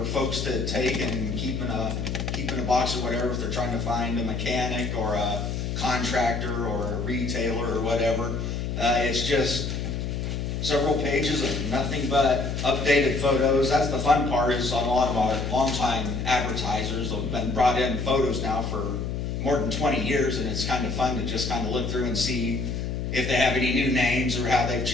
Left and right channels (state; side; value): noise; left; hum, 3 dB below the sound